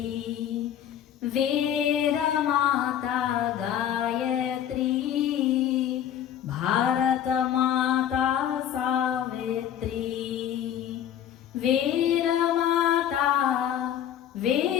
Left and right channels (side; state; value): right; quieter; 10.1 dB